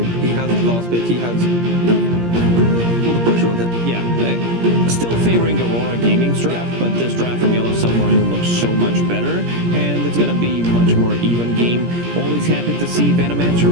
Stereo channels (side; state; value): left; late; 17 ms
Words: He has his last pick. He has all the pressure on him. Yeah, still favoring Aurora Gaming's draft, but this draft from Yellow Submarine looks so much better, and it's going to be much more even game. Always happy to see Venomancer,